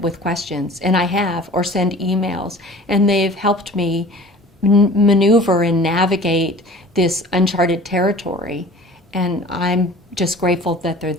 with questions, and I have, or send emails, and they've helped me maneuver and navigate this uncharted territory, and I'm just grateful that they're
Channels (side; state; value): both; normal; correlation 0.44